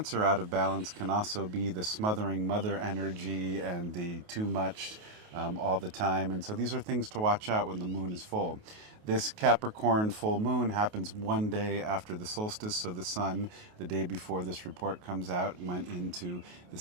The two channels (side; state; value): left; late; 28 ms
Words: out of balance can also be the smothering mother energy and the too much all the time. And so these are things to watch out when the moon is full. This Capricorn full moon happens one day after the solstice, so the sun, the day before this report comes out, went into the